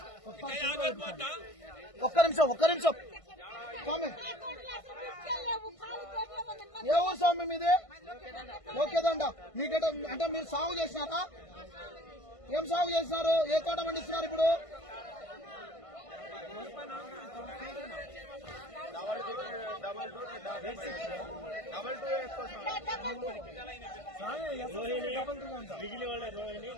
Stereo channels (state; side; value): late; right; 1.5 ms